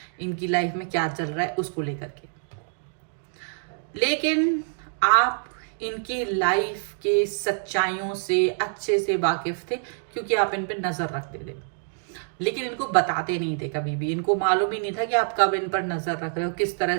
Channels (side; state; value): left; silent; digital silence